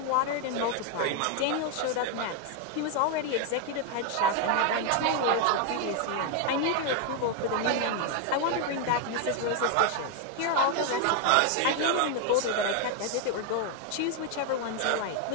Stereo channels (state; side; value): different; both; correlation 0.01